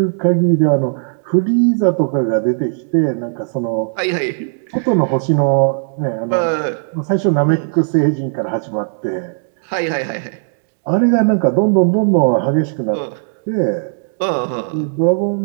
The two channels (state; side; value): silent; left; digital silence